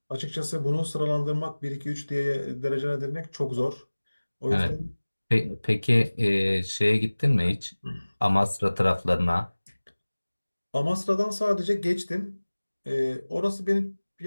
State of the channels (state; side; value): inverted; both; correlation -1.00